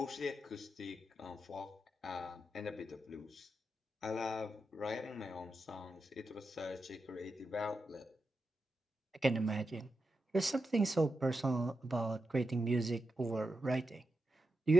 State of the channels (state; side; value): normal; both; correlation 0.88